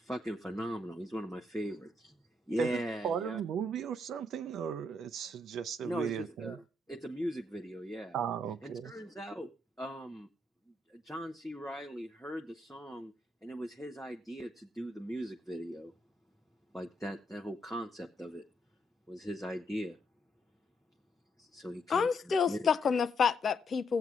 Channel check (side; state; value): both; normal; correlation 0.76